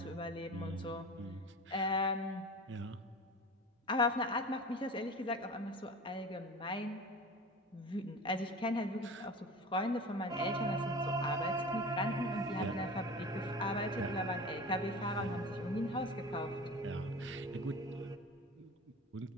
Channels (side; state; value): both; normal; correlation 0.35